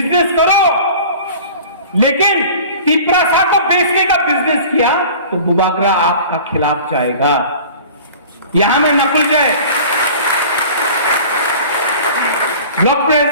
करो। लेकिन तिपरा सा को बेचने का बिजनेस किया तो बुबागरा आपका खिलाफ जाएगा। यहां में नकुल जय ब्लॉक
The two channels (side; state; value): both; inverted; correlation -0.42